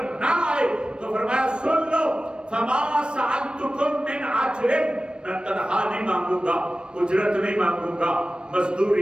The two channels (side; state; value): left; late; 0.054 ms